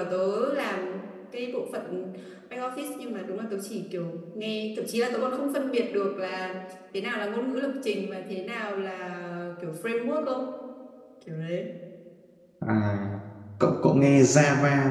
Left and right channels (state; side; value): identical; both; correlation 1.00